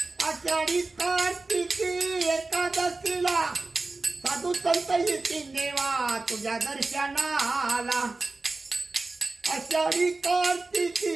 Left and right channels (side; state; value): left; quieter; 3.5 dB